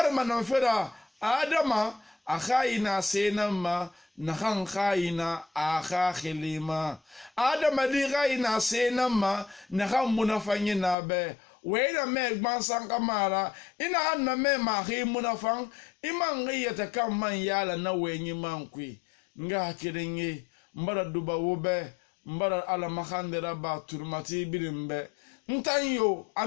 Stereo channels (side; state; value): right; drops out; at 11.0 s